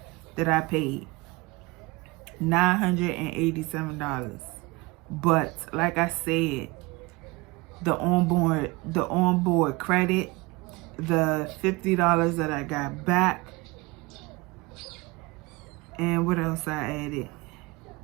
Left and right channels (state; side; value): quieter; left; 24.0 dB